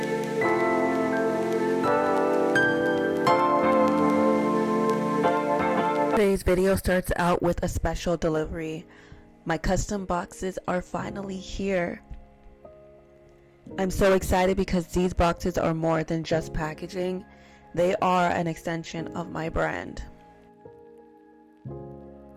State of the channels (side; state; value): both; identical; correlation 1.00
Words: Today's video starts out with a special delivery. My custom boxes are finally here. I'm so excited because these boxes are more than just packaging. They are an extension of my brand.